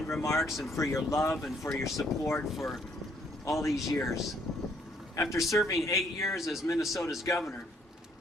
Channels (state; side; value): normal; both; correlation 0.66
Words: remarks, and for your love and for your support for all these years. After serving 8 years as Minnesota's governor,